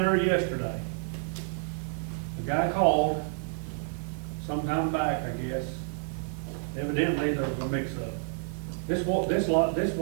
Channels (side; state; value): left; silent; digital silence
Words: there yesterday. The guy called sometime back, I guess. Evidently, there was a mix-up. This